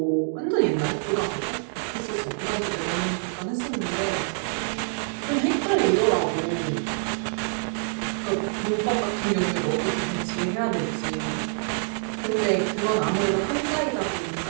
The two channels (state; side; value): silent; left; digital silence